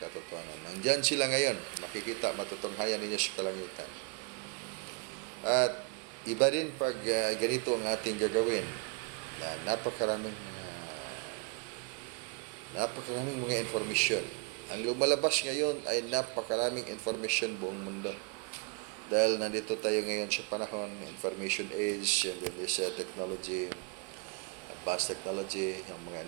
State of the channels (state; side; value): quieter; left; 31.3 dB